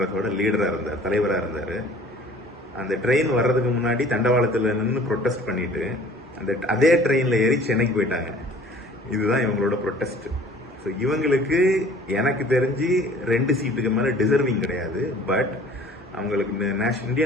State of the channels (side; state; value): both; normal; correlation 0.49